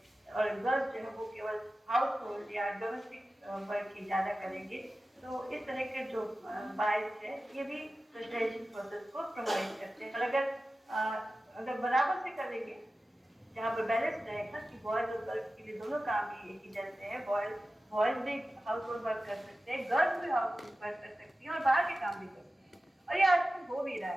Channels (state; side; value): normal; both; correlation 0.95